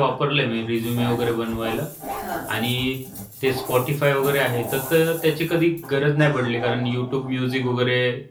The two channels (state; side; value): identical; both; correlation 1.00